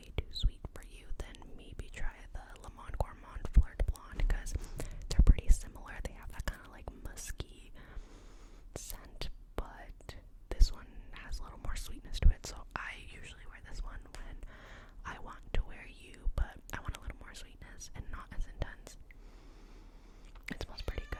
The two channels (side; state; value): both; identical; correlation 1.00